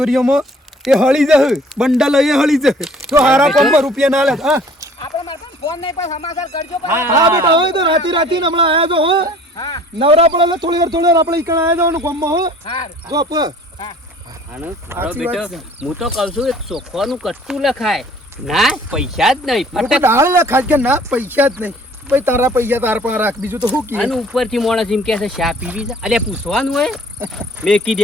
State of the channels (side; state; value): both; normal; correlation 0.53